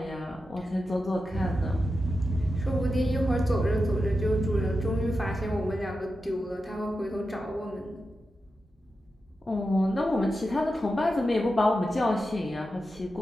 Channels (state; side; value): normal; both; correlation 0.90